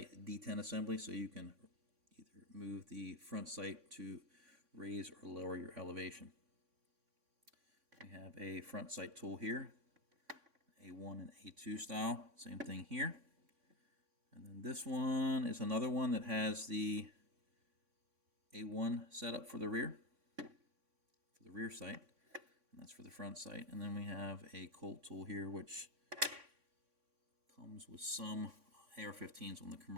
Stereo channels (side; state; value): left; late; 3.6 ms